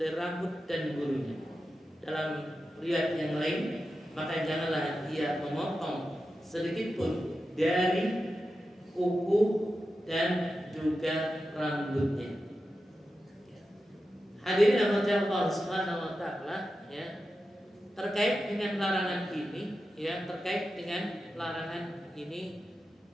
rambut dan bulunya. Dalam riwayat yang lain, maka janganlah dia memotong sedikit pun dari kuku dan juga rambutnya. Hadirin rahmati Allah Subhanahu wa taala, ya, terkait dengan larangan ini, ya, terkait dengan larangan ini,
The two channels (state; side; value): normal; both; correlation 0.91